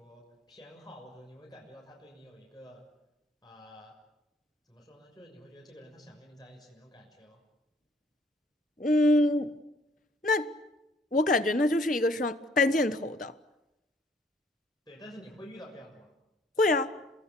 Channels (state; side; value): normal; both; correlation 0.62